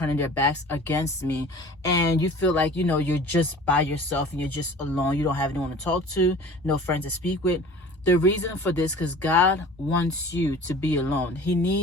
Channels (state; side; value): normal; both; correlation 0.43